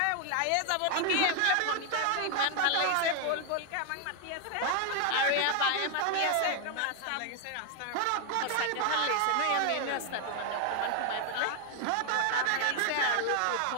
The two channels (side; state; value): both; different; correlation 0.00